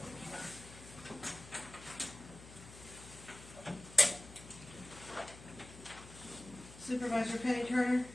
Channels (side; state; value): left; noise; hum, 17 dB below the sound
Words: Supervisor Penny Turner,